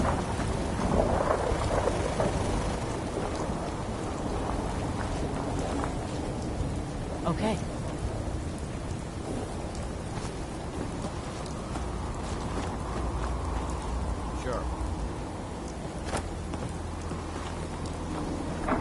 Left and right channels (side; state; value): both; identical; correlation 1.00